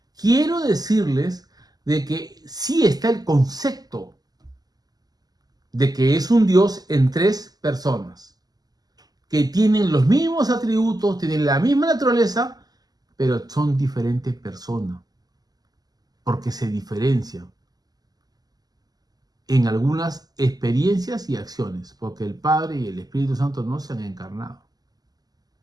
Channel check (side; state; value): left; late; 0.19 ms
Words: quiero decirles de que sí está el concepto de que es un Dios en tres personas, que tienen los mismos atributos, tienen la misma naturaleza, pero son diferentes personas, porque se diferencian en algunas experiencias y acciones, porque el Padre y el Espíritu Santo no se han encarnado.